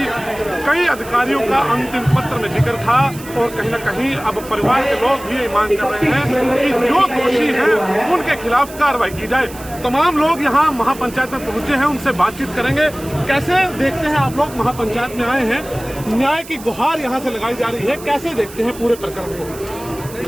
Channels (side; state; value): right; noise; hiss, 17 dB below the sound